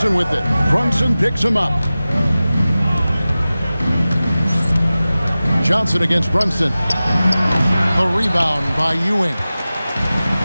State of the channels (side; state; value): both; inverted; correlation -0.96